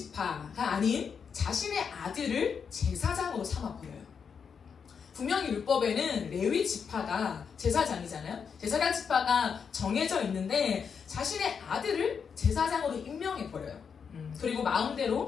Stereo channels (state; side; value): quieter; right; 6.5 dB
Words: 아닌 자신의 아들을 제사장으로 삼아버려요. 분명히 율법에는 레위 지파가 제사장이잖아요. 제사장 지파가 정해져 있는데 자신의 아들을 제사장으로 임명해버려요. 그리고